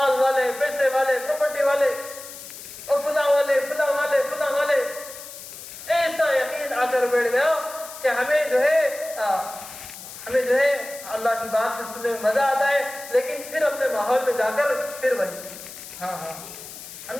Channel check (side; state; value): left; noise; hiss, 13 dB below the sound